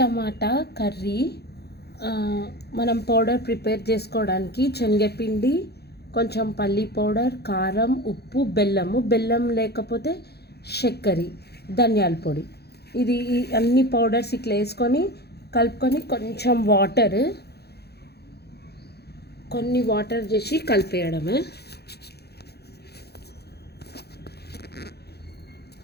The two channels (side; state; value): right; late; 0.47 ms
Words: కర్రీ. మనం powder prepare చేసుకోవడానికి శనగపిండి, కొంచెం పల్లి పౌడర్, కారం, ఉప్పు, బెల్లం లేకపోతే చక్కెర, ధనియాల పొడి, ఇది అన్ని పౌడర్స్ ఇట్లా వేసుకొని కలుపుకొని కొన్ని వాటర్ చేసి కలిపేయడమే.